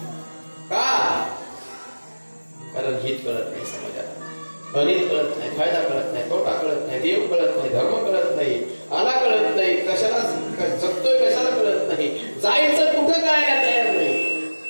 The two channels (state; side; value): inverted; both; correlation -1.00